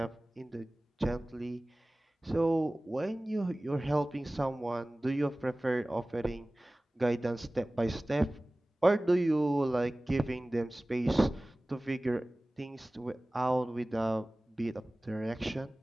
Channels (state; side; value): normal; both; correlation 0.98